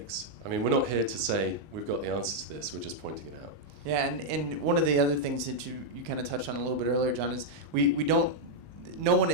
We're not here to say we've got the answer to this, we're just pointing it out. Yeah, and one of the other things that you kind of touched on a little bit earlier, John, is no one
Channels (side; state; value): left; late; 19 ms